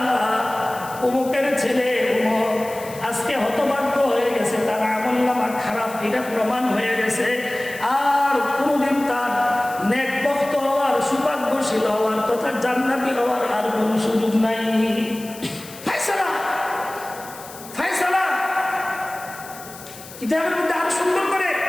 অমুকের ছেলে অমুক আজকে হতভাগ্য হয়ে গেছে, তার আমলনামা খারাপ, এটা প্রমাণ হয়ে গেছে, আর কোনদিন তার নেকবখত হওয়ার, সৌভাগ্যশীল হওয়ার তথা জান্নাতি হওয়ার আর কোনো সুযোগ নাই। ফায়সালা, ফায়সালা। কিতাবের মধ্যে আরো সুন্দর করে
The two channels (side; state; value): left; noise; hiss, 17 dB below the sound